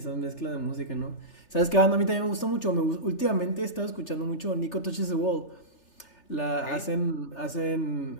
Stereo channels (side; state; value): right; late; 3.3 ms